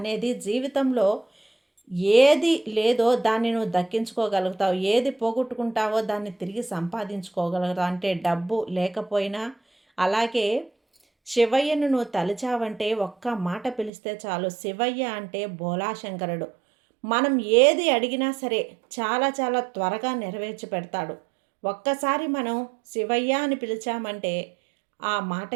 జీవితంలో ఏది లేదో దాన్ని నువ్వు దక్కించుకోగలుగుతావు. ఏది పోగొట్టుకుంటావో దాన్ని తిరిగి సంపాదించుకోగలుగుతావు. అంటే డబ్బు లేకపోయినా. అలాగే శివయ్యను నువ్వు తలిచావంటే ఒక్క మాట పిలిస్తే చాలు. శివయ్య అంటే బోలాశంకరుడు. మనం ఏది అడిగినా సరే చాలా చాలా త్వరగా నెరవేర్చి పెడతాడు. ఒక్కసారి మనం శివయ్య అని పిలిచామంటే ఆ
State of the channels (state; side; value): drops out; left; at 13.9 s